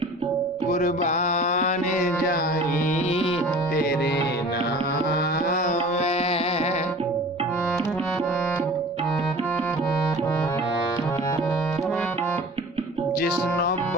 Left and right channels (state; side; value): normal; both; correlation 0.43